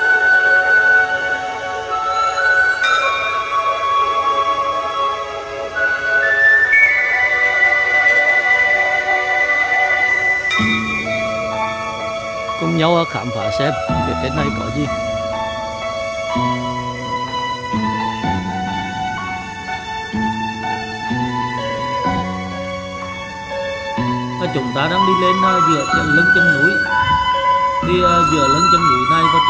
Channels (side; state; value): both; identical; correlation 1.00